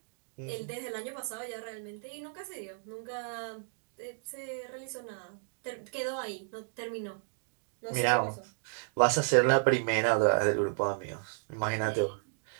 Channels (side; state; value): left; silent; digital silence